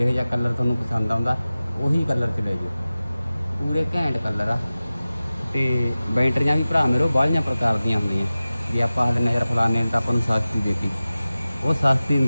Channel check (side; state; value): both; inverted; correlation -0.96